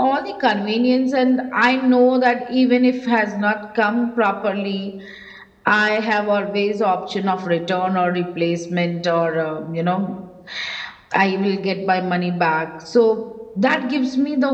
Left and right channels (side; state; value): both; identical; correlation 1.00